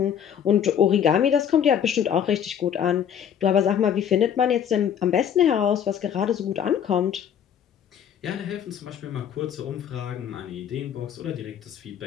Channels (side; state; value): right; quieter; 8.9 dB